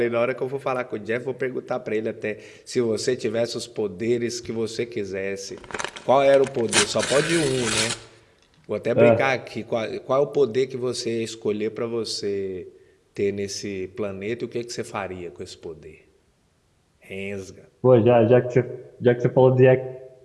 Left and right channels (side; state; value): both; identical; correlation 1.00